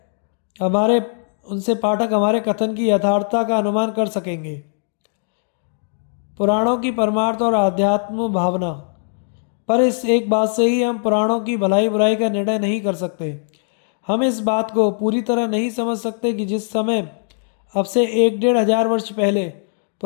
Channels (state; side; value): silent; right; digital silence